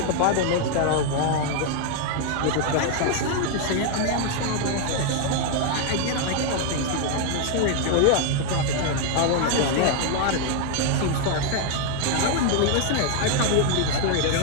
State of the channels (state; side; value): different; both; correlation 0.00